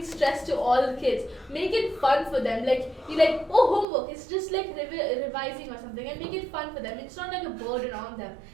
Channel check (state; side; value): drops out; left; at 3.9 s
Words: stress to all the kids. Make it fun for them. Like you like, oh, homework. It's just like revising or something, and make it fun for them. It's not like a burden on them.